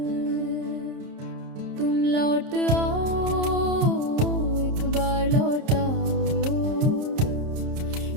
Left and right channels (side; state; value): left; late; 30 ms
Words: तुम लौट आओ, एक बार लौट आओ,